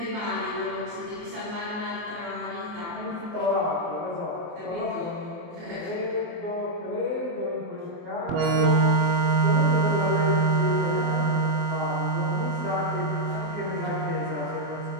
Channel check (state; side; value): late; left; 24 ms